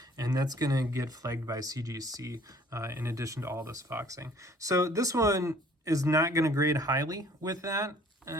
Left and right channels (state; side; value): normal; both; correlation 0.55